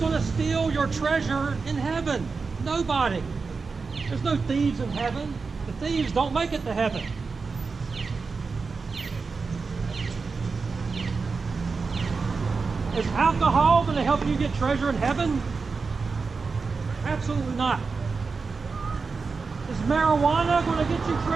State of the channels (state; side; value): quieter; left; 4.6 dB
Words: to steal your treasure in heaven? Nobody. There's no thieves in heaven. The thieves don't make it to heaven. Is alcohol going to help you get treasure in heaven? Absolutely not. Is marijuana going to get you